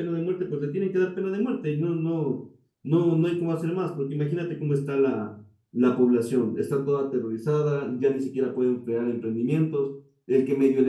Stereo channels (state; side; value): identical; both; correlation 1.00